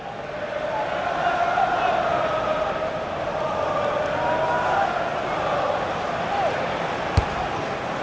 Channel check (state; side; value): identical; both; correlation 1.00